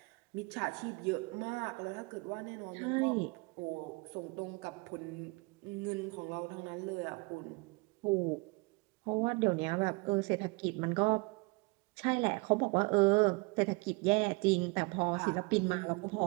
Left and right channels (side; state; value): left; quieter; 28.0 dB